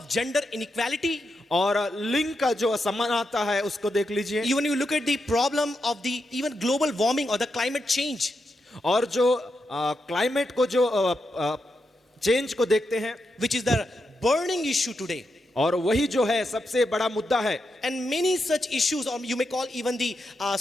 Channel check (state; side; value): normal; both; correlation 0.85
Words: gender inequality. और लिंग का जो असमानता है उसको देख लीजिए। Even you look at the problem of the even global warming or the climate change. और जो क्लाइमेट को जो चेंज को देखते हैं, which is the burning issue today. और वही जो है सबसे बड़ा मुद्दा है। And many such issues, or you may call even the